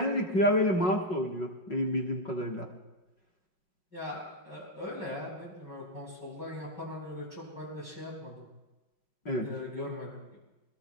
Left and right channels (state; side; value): late; right; 5.4 ms